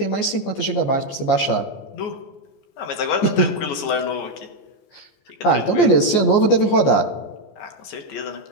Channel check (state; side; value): late; right; 14 ms